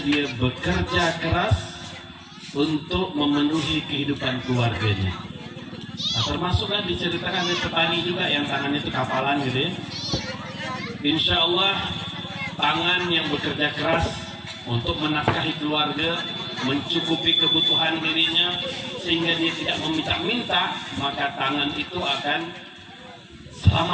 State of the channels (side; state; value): both; identical; correlation 1.00